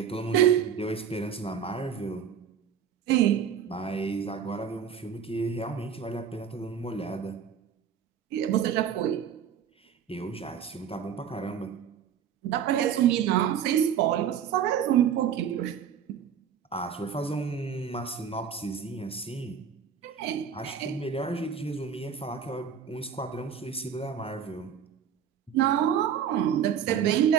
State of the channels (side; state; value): left; quieter; 8.1 dB